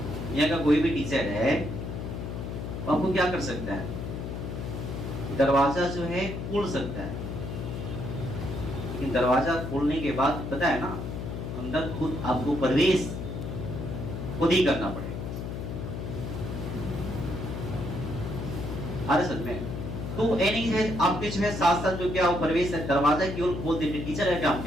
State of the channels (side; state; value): left; noise; hum, 5 dB below the sound